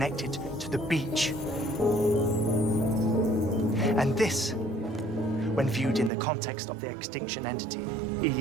to the beach. And this, when viewed in the context of the extinction entity,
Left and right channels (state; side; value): drops out; left; at 6.1 s